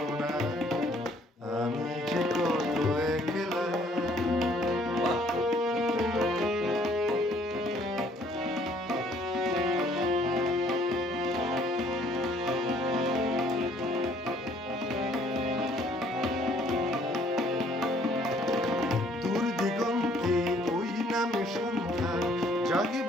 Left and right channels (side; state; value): both; normal; correlation 0.61